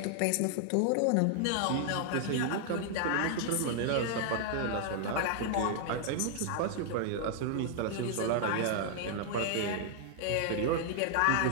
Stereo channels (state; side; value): different; both; correlation 0.00